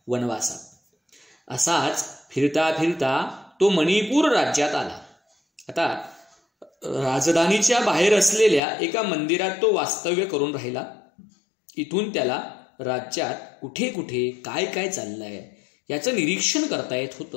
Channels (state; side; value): drops out; right; at 8.6 s